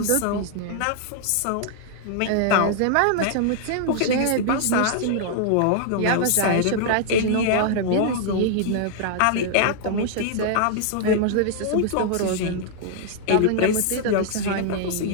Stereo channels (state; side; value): different; both; correlation -0.01